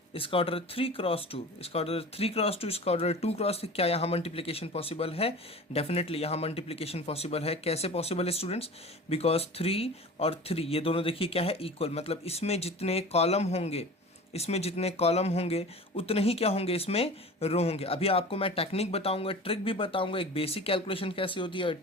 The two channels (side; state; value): both; normal; correlation 0.37